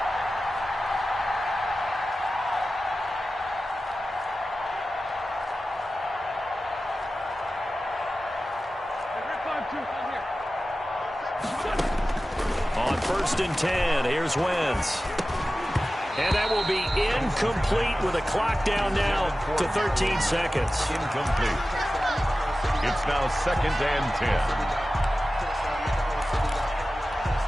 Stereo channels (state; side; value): normal; both; correlation 0.95